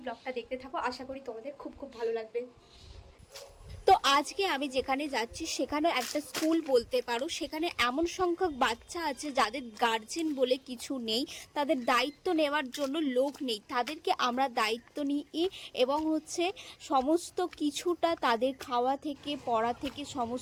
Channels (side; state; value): both; identical; correlation 1.00